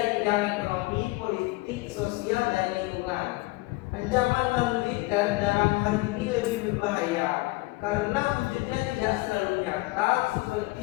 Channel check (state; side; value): quieter; right; 21.6 dB